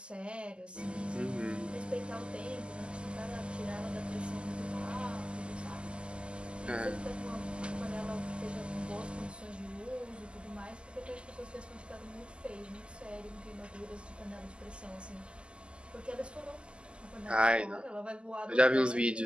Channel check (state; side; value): late; left; 0.051 ms